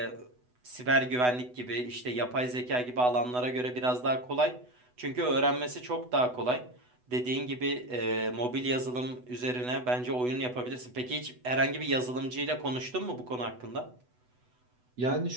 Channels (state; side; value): late; left; 8.1 ms